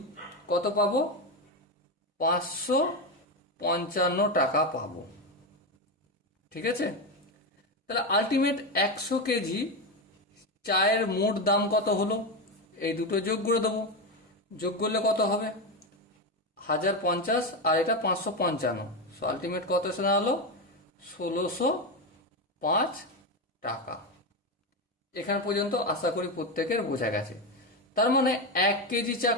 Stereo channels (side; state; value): both; normal; correlation 0.13